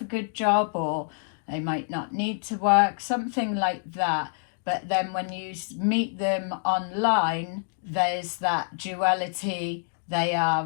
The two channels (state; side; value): silent; right; digital silence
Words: a good job, or they might not need to work, something like that. But then when you meet them online, there's that duality. They are